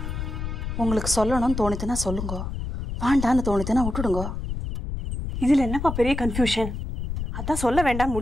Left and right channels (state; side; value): noise; left; rumble, 5 dB below the sound